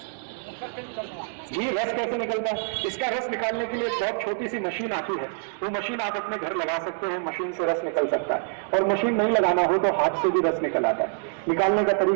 जी, रस कैसे निकलता है? इसका रस निकालने के लिए एक बहुत छोटी सी मशीन आती है, वो मशीन आप अपने घर लगा सकते हैं, मशीन से रस निकल सकता है। और मशीन नहीं लगाना हो तो हाथ से भी रस निकल आता है। निकालने का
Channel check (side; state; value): left; silent; 61 dB below the other